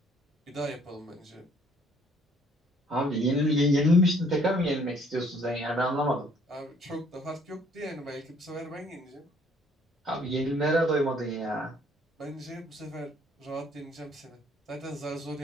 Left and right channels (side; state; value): both; normal; correlation 0.61